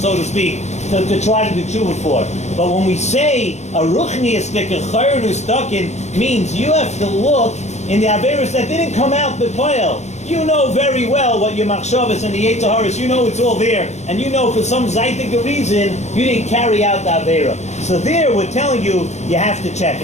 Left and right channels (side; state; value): right; late; 0.33 ms